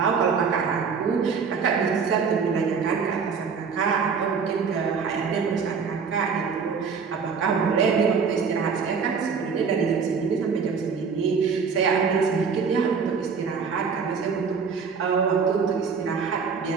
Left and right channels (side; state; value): left; quieter; 5.7 dB